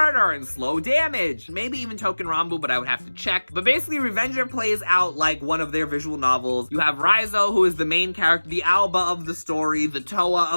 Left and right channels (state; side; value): inverted; both; correlation -1.00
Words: and Slow Damage, maybe even Token Rambu, but I would have to check. But basically, Revenger plays out like one of their visual novels. You have Raizo, who is the main character, the Alba of the story, the Toa